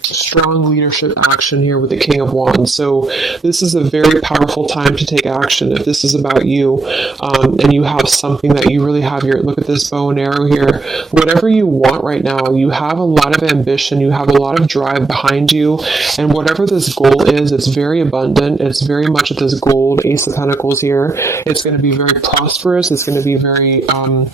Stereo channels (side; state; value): left; quieter; 3.7 dB